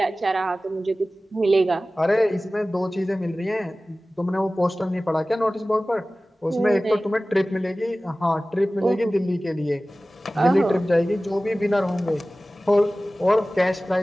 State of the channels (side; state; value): both; normal; correlation 0.97